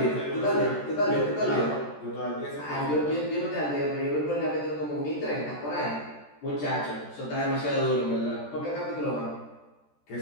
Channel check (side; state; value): right; late; 14 ms